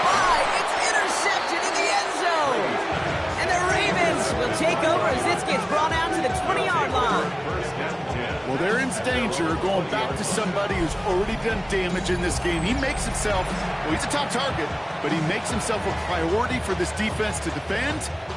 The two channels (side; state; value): both; identical; correlation 1.00